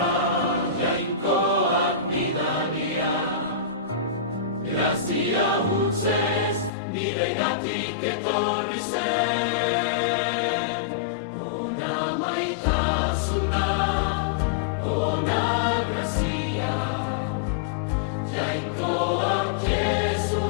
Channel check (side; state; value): right; drops out; at 6.7 s